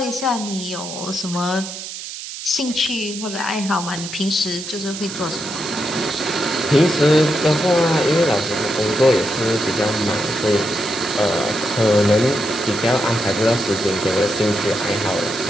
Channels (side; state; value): right; noise; hiss, 9 dB below the sound